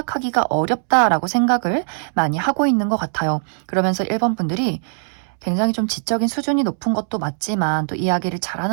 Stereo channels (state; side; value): silent; left; 65 dB below the other